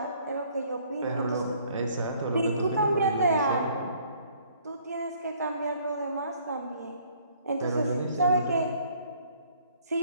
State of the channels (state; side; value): inverted; both; correlation -0.60